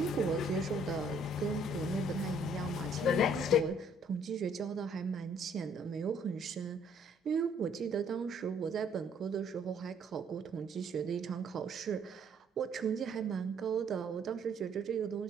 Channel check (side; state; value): both; normal; correlation 0.63